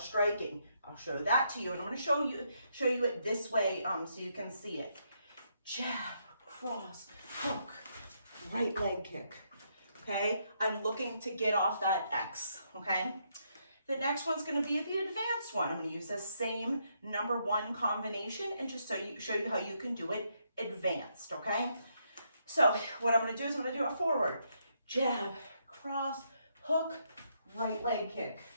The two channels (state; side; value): inverted; both; correlation -0.76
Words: I'll show that to you, and I'm going to show you it this way so you can see it. Jab, cross, hook, right leg kick. Okay, I'm looking to get off that X. Okay, the next one's going to be the advanced one. I'm going to use the same number 1 combination and just show you how you can do it advanced. Okay, so what I'm going to do is I'm going to do a forward jab, cross, hook, right leg kick,